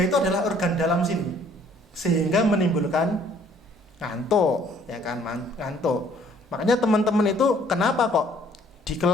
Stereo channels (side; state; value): both; normal; correlation 0.60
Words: itu adalah organ dalam sini, sehingga menimbulkan ngantuk, ya kan, ngantuk. Makanya teman-teman itu kenapa kok di